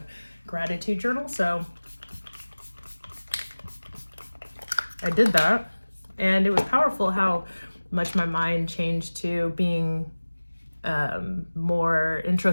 gratitude journal. So I did that, and it was powerful how much my mind changed to being more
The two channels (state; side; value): inverted; both; correlation -1.00